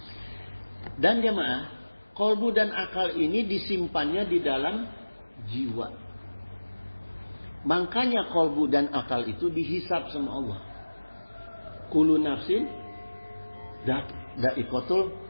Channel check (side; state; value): both; inverted; correlation -1.00